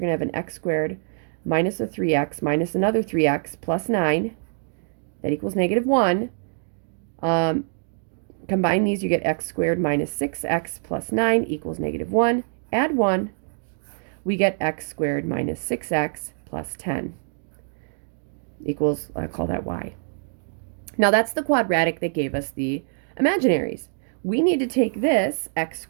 going to have an x squared minus a 3x minus another 3x plus 9. That equals negative 1. Combine these, you get x squared minus 6x plus 9 equals negative 1. Add 1. We get x squared minus 6x plus 10 equals, I call that y. Now that's the quadratic that gave us the imaginaries. We need to take this x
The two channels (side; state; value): left; silent; digital silence